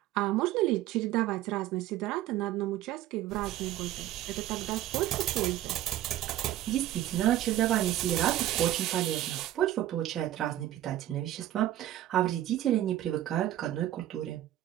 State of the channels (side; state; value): left; quieter; 13.6 dB